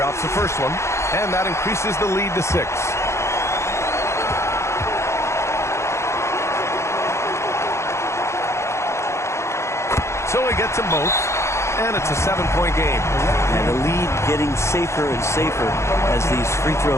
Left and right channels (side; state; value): right; late; 0.13 ms